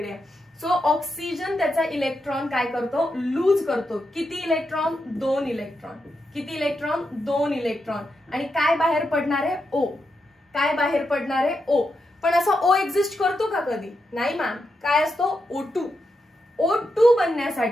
सो ऑक्सिजन त्याचा इलेक्ट्रॉन काय करतो, लूज करतो. किती इलेक्ट्रॉन, 2 इलेक्ट्रॉन. किती इलेक्ट्रॉन, 2 इलेक्ट्रॉन. आणि काय बाहेर पडणार आहे, O. काय बाहेर पडणार आहे, O. पण असा O एक्झिस्ट करतो का कधी, नाही मॅम. काय असतो, O2. O2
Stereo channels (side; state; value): both; normal; correlation 0.85